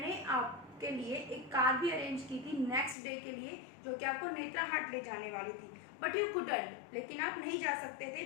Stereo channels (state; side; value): drops out; right; at 3.0 s